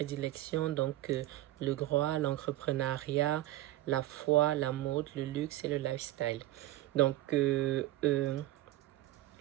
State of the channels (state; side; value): quieter; left; 15.7 dB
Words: donc le droit, l'entrepreneuriat, la foi, la mode, le luxe et le lifestyle. Donc,